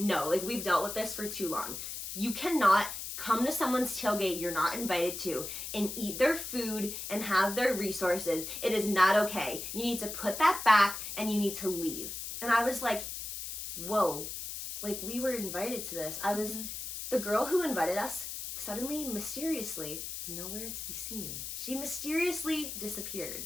like we've dealt with this for too long. You cannot come to someone's tailgate you're not invited to and eat their food and have their resources. It is not okay. You need to put that back and you need to leave. And I was like, whoa, like we were invited to this. The girl who invited us suddenly, mysteriously, nowhere to be seen. She mysteriously disappeared,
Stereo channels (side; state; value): left; noise; hiss, 7 dB below the sound